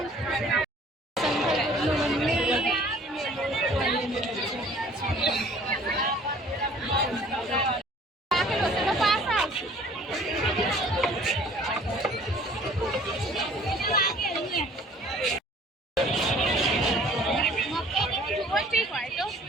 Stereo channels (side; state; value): both; normal; correlation 0.52